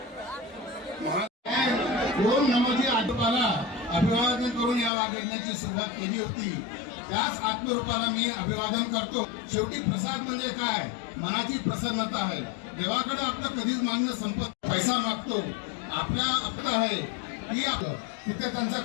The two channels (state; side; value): drops out; right; at 4.9 s